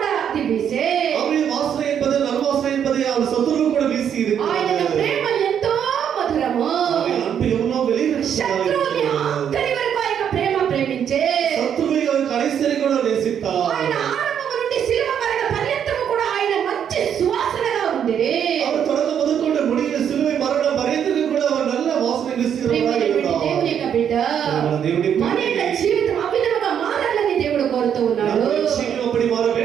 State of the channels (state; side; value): quieter; left; 8.7 dB